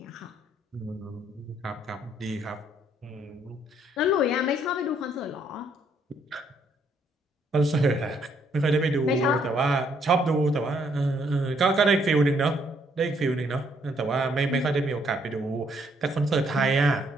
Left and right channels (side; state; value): both; normal; correlation 0.69